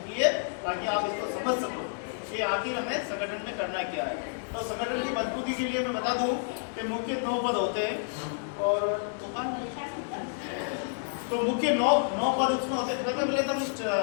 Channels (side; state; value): right; silent; 58 dB below the other